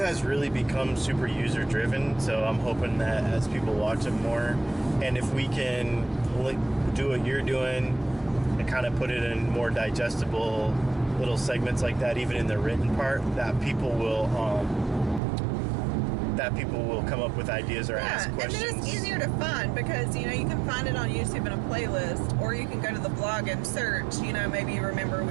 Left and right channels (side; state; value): left; drops out; at 15.2 s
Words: really become super user driven, so I'm hoping that as people watch it more, and if we can do what you're doing and kind of put it in more digestible little segments like that, even in the written part, that people will come up with ideas or ask questions. And then it's easier to find because, you can find it on YouTube in a playlist, or you can go to the blog and search, maybe you remember